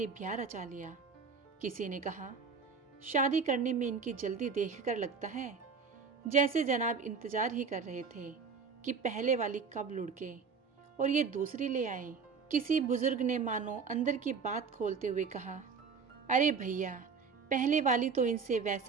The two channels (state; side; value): quieter; left; 5.5 dB